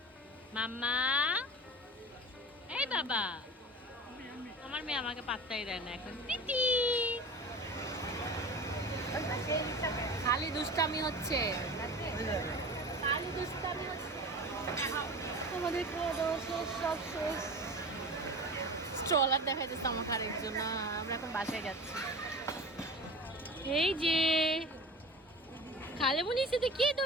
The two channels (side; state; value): both; normal; correlation 0.34